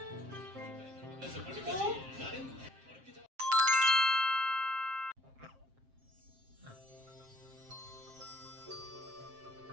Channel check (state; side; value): late; left; 7.5 ms